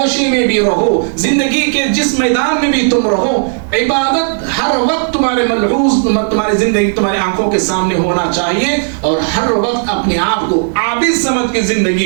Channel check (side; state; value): left; silent; digital silence